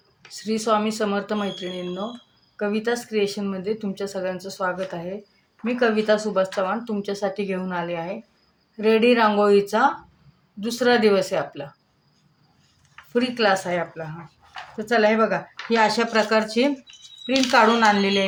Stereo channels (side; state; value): both; identical; correlation 1.00